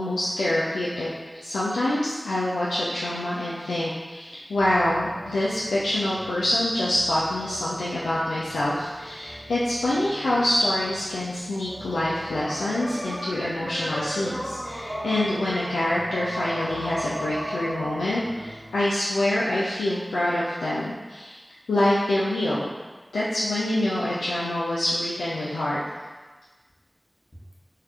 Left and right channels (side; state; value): both; normal; correlation 0.95